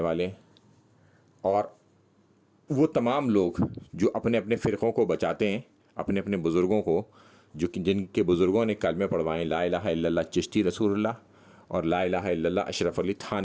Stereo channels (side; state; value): both; identical; correlation 1.00